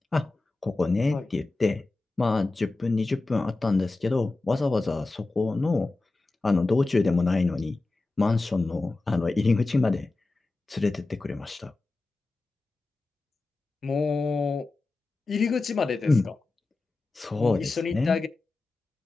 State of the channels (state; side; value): quieter; right; 3.3 dB